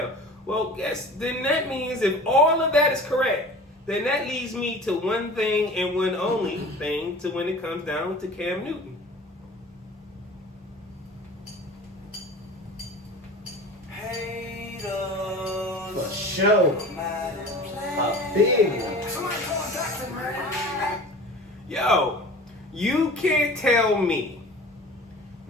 Well, then that means if all of that is correct, then that leads me to one thing and one only thing to when it comes down to Cam Newton. For sure. A big one. Somone Called. Yo, you can't tell me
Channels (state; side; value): normal; both; correlation 0.40